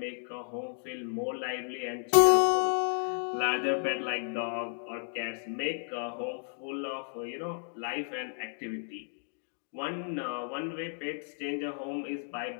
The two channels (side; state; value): right; silent; 56 dB below the other